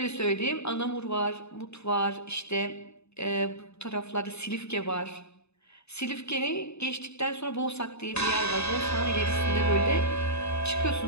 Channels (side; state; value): right; late; 0.80 ms